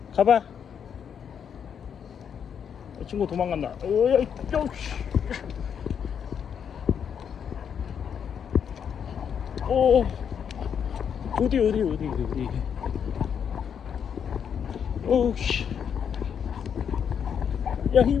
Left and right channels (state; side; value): quieter; right; 7.7 dB